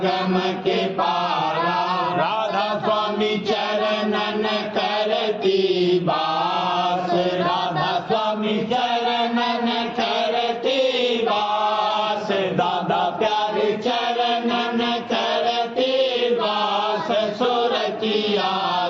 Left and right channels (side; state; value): both; identical; correlation 1.00